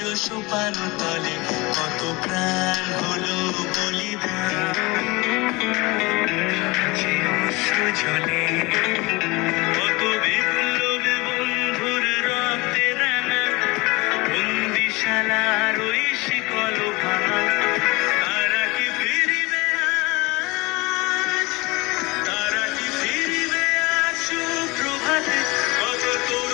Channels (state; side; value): quieter; right; 23.8 dB